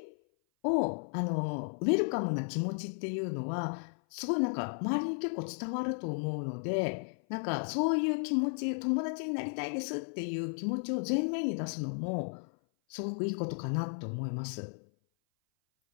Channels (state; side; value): silent; right; 55 dB below the other